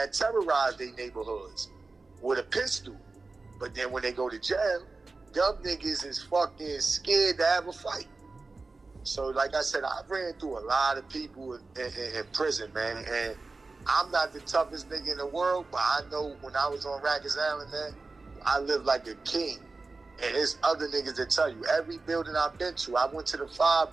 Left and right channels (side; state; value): left; quieter; 3.7 dB